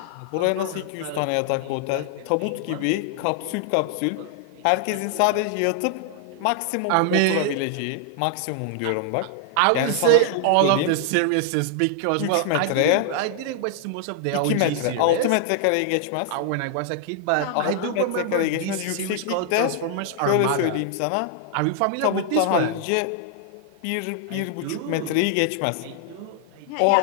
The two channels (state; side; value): different; both; correlation 0.00